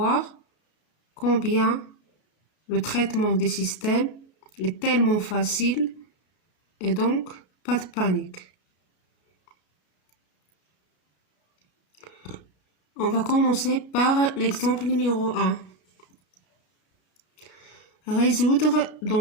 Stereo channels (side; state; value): right; late; 32 ms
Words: combien le traitement des systèmes est tellement facile et donc pas de panique. On va commencer par l'exemple numéro 1. Résoudre